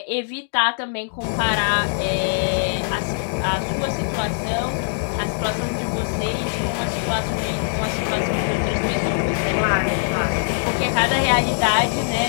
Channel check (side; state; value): right; silent; digital silence